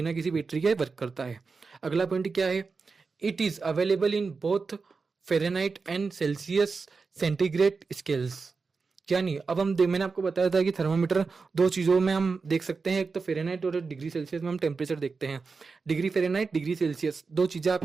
किसी बैटरी के वर्क करता है। अगला पॉइंट क्या है, it is available in both Fahrenheit and Celsius centigrade scales, यानी अब मैंने आपको बताया था कि थर्मामीटर दो चीज़ों में हम देख सकते हैं, एक तो फ़ारेनहाइट और डिग्री सेल्सियस में हम टेम्परेचर देखते हैं। डिग्री फ़ारेनहाइट, डिग्री सेल्सियस, दो चीज़ें आप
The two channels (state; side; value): quieter; left; 4.6 dB